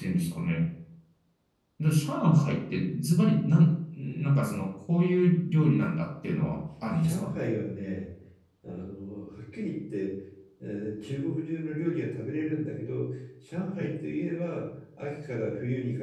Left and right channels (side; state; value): both; identical; correlation 1.00